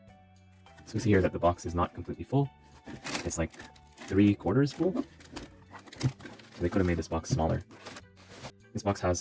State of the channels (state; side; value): identical; both; correlation 1.00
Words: So we see here that the box is not completely full. It's like 3/4 full. So they could have made this box smaller. This box